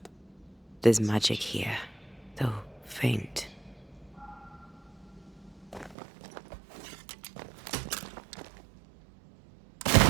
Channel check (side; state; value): left; drops out; at 6.0 s